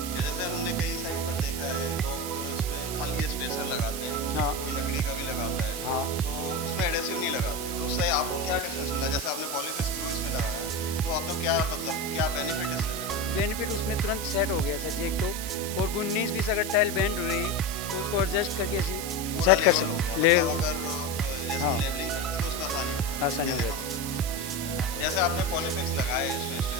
कि जैसे हमने कई साइड पर देखा है लोग इसमें खाली स्पेसर लगाते हैं, हाँ कोई लकड़ी का भी लगाता है, हाँ। तो उसमें एडेसिव नहीं लगाते, तो उससे आपको क्या डिफरेंस मिला? जैसे आपने पॉलीफिक्स ग्लू इसमें लगाया, तो आपको क्या मतलब क्या बेनिफिट इससे मिला? बेनिफिट उसमें तुरंत सेट हो गया सर जी, एक तो। और 19-20 अगर टाइल बेंड हो रही तो उसको एडजस्ट करके ऐसे पूरा सेट कर लेवल हो गया, सकते ले। मतलब अगर जैसे हम हाँ, लेवलिंग करते तो उसमें आसानी हो जाती है, आसानी हो कहने का जाती है। मतलब। जैसे आपने पॉलीफिक्स लगाए इसमें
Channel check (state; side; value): noise; right; hiss, 6 dB below the sound